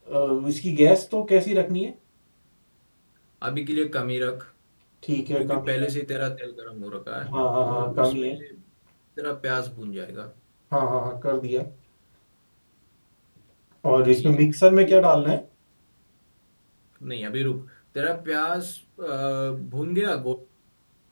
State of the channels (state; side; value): inverted; both; correlation -1.00